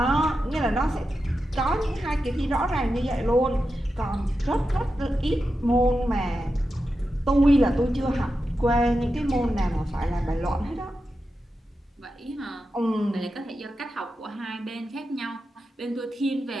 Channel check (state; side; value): normal; both; correlation 0.90